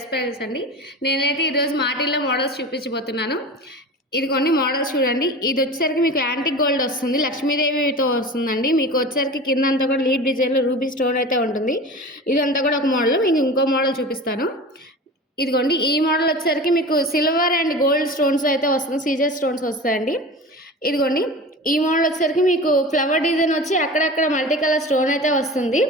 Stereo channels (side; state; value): both; normal; correlation 0.33